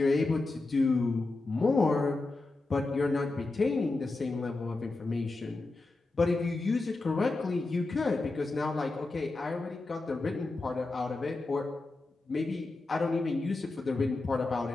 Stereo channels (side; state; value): right; quieter; 3.3 dB